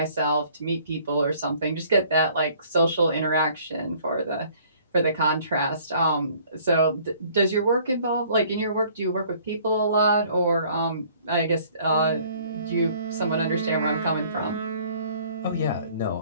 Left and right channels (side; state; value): both; inverted; correlation -0.57